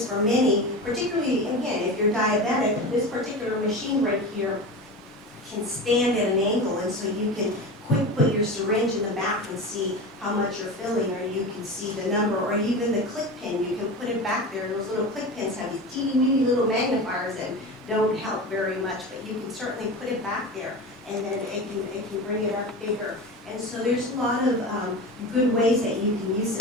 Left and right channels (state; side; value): normal; both; correlation 0.28